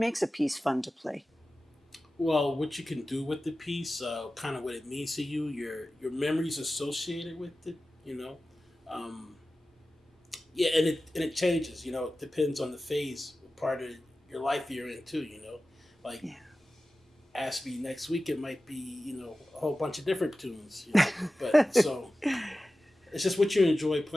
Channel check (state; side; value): normal; both; correlation 0.95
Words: a piece fun to play? Well, what you can do with the piece, kind of what it means to you, your memories associated with it, you know. Um, yeah, and it changes. You know, it depends on the phase, part of your life you're in too. You know, like Yeah. ask me next week, it might be a whole bunch of different tunes. You know, but so it's just what you enjoy